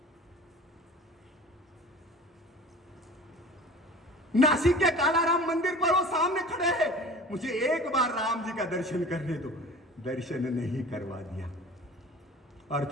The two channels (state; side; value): normal; both; correlation 0.41